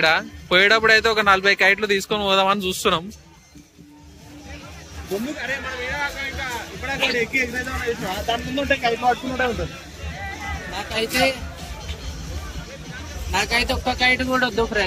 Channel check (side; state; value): both; identical; correlation 1.00